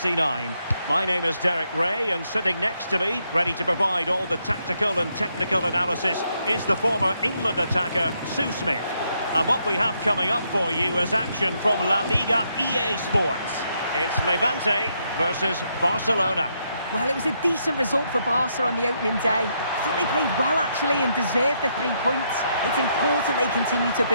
My name is Derek Ray, and sitting next to me, ready to provide all the tactical and technical analysis, is the former England attacker, Sue Smith. And what we have coming up for you is action from La Liga EA Sports. It's Levante versus Barcelona. Well, it was a decent result for Barca on the opening day. I thought they played well, actually, and deserved the 3 points. It's important they continue to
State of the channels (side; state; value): both; inverted; correlation -0.77